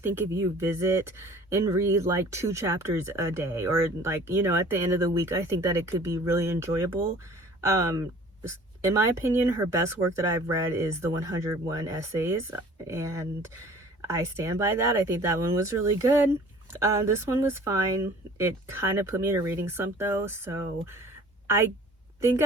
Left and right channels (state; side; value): normal; both; correlation 0.49